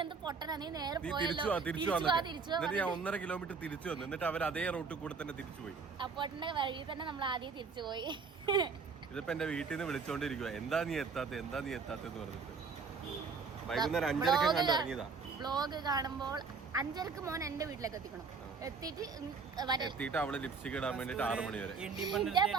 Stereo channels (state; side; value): quieter; left; 5.1 dB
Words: എന്ത് പൊട്ടനാ, നീ നേരെ പോയല്ലോ, തിരിച്ചു വാ. ഞാൻ 1.5 കിലോമീറ്റർ തിരിച്ചു വന്നു. എന്നിട്ട് അവർ അതേ റൂട്ടിൽ കൂടെ തന്നെ തിരിച്ചു പോയി. അപ്പോട്ടിന്റെ വഴി തന്നെ നമ്മൾ ആദ്യം തിരിച്ചു പോയി. ഇതിപ്പോ എന്റെ വീട്ടിൽ നിന്ന് വിളിച്ചോണ്ടിരിക്കുക, എന്താ നീ എത്താത്തെന്ന് പറഞ്ഞിട്ട്. വൈകുന്നേരം 5:30 കണ്ട് ഇറങ്ങിയതാ. വ്ലോഗ് കാണുമ്പോൾ 5:30 മോൻ എന്റെ വീട്ടിലേക്ക് എത്തിക്കണം. എത്തിയിട്ട് അവള് ലിപ്സ്റ്റിക് ഇടാൻ വേണ്ടിട്ട് 6 മണി വരെ.